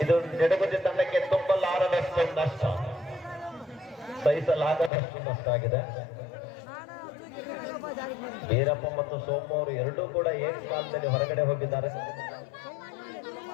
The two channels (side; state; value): right; drops out; at 4.9 s